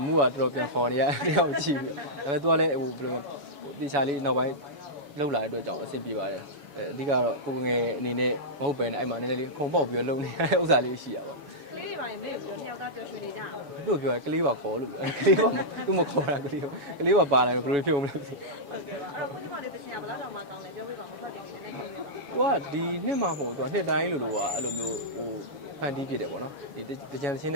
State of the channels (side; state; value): left; late; 7.0 ms